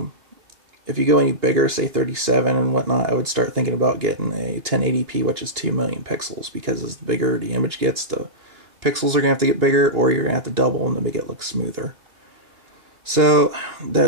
If you go any bigger, say 37 and whatnot, I would start thinking about getting a 1080p, which is 2,000,000 pixels, because as bigger the image gets, the pixels are going to have to get bigger, or you're going to have to double them to make it look smoother. So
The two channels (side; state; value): left; late; 2.9 ms